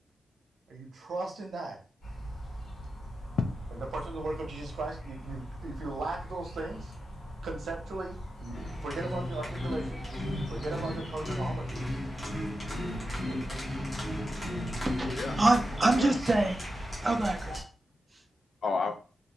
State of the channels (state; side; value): normal; both; correlation 0.90